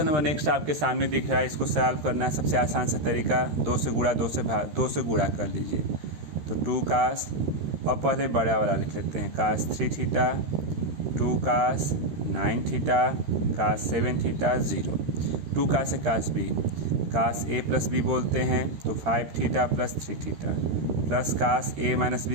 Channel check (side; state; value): left; late; 13 ms